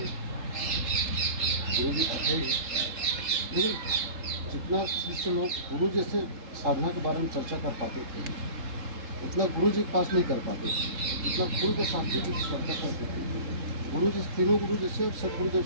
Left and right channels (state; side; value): late; left; 3.7 ms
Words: गुरु जी थे ही, लेकिन जितना शिष्य लोग गुरु जैसे साधना के बारे में चर्चा कर पाते थे उतना गुरु जी के पास नहीं कर पाते थे। जितना गुरु के शास्त्री जी चर्चा करते थे, गुरु जी तीनों गुरु जैसे और सब गुरु